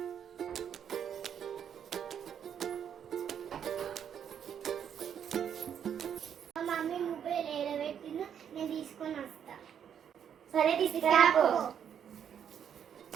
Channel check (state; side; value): quieter; left; 8.5 dB